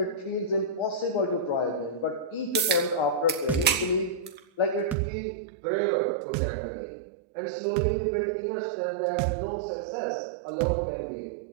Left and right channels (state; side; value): drops out; left; at 5.0 s